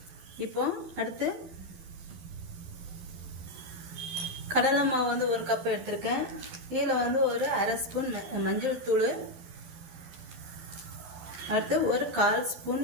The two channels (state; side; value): late; left; 12 ms